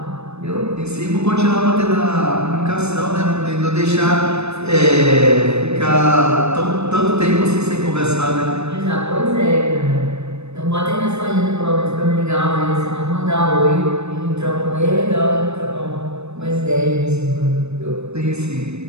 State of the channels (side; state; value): left; late; 0.81 ms